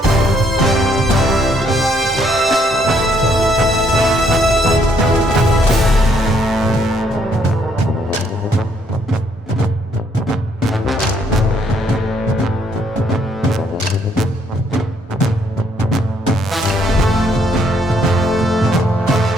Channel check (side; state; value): both; normal; correlation 0.69